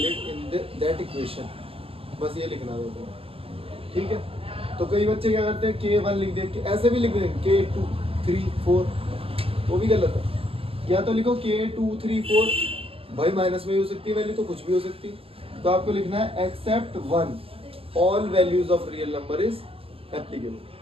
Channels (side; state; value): left; late; 0.27 ms